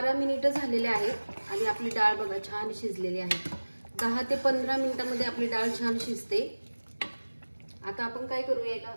मिनिटं झालेले आहेत आणि आपली डाळ बघा छान शिजलेली आहे। 10 ते 15 मिनिटांमध्ये आपली डाळ छान शिजते। आता आपण काय करूया, याला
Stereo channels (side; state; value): both; inverted; correlation -1.00